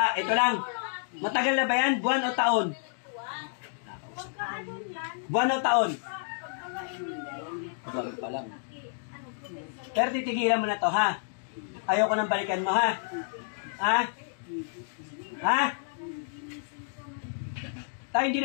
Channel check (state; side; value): silent; right; digital silence